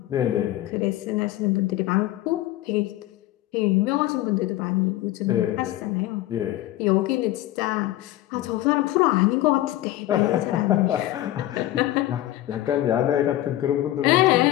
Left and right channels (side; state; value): right; quieter; 15.1 dB